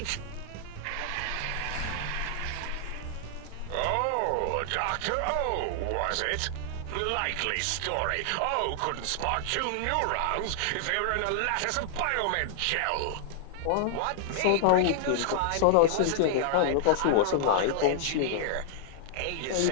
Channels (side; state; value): both; different; correlation -0.01